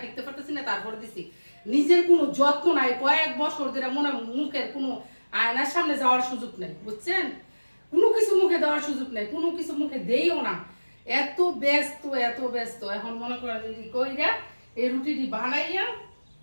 টিকতে পারতেছি না, তারপরে দিছি। নিজের কোনো যত্ন নাই, কয়েক বছর ধরে মনে মুখের কোনো আয়নার সামনে যাওয়ার সুযোগ নেই, বুঝছেন, কোনো কিছু মুখে দেওয়ার সুযোগ নেই, কোনো কিছু মুখে দেইও না, এত ব্যস্ত এত ব্যস্ত। এখন মনে করেন কইরা এই রুটিটি বানাইয়া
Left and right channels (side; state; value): both; inverted; correlation -1.00